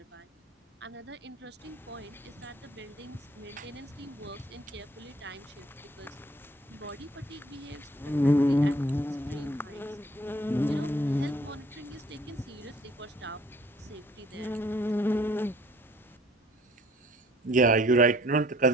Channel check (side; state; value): both; normal; correlation 0.57